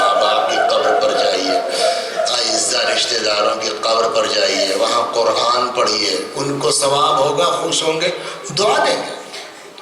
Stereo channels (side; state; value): both; identical; correlation 1.00